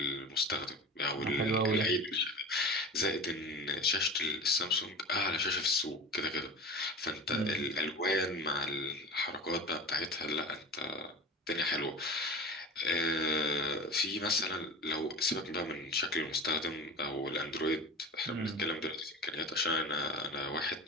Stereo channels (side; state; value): both; normal; correlation 0.33